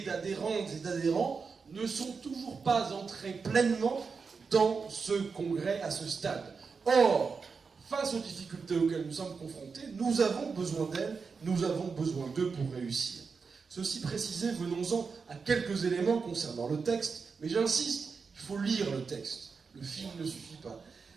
d'adhérentes et d'adhérents ne sont toujours pas entrés pleinement dans ce congrès à ce stade. Or, face aux difficultés auxquelles nous sommes confrontés, nous avons besoin d'elles, nous avons besoin d'eux pour réussir. Ceci précisé, venons-en à quelques éléments concernant le texte, mais j'insiste, il faut lire le texte. Le film ne suffit pas.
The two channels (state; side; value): quieter; left; 5.1 dB